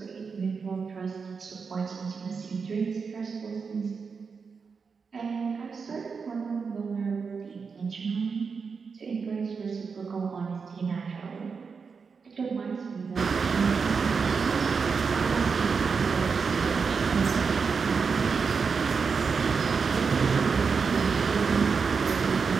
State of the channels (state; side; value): quieter; left; 5.4 dB